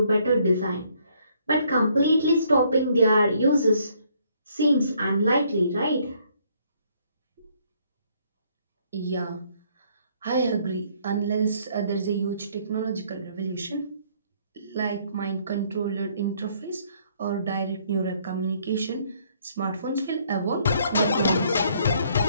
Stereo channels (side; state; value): both; inverted; correlation -0.66